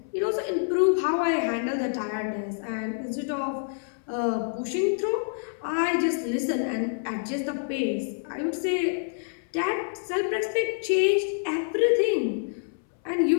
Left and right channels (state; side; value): silent; right; 60 dB below the other